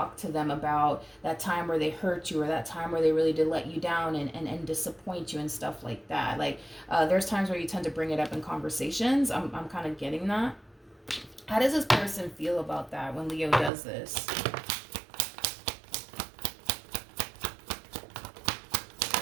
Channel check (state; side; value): drops out; left; at 13.7 s